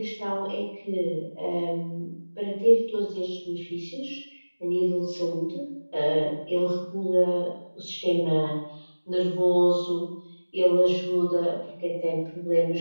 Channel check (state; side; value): inverted; both; correlation -1.00